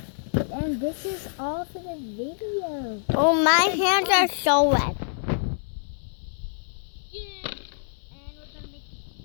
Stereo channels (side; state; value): right; silent; 57 dB below the other